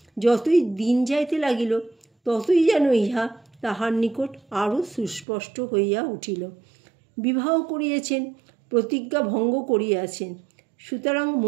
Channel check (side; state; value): left; drops out; at 5.2 s